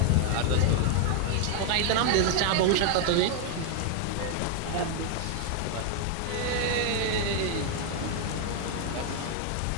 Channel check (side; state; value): both; different; correlation 0.01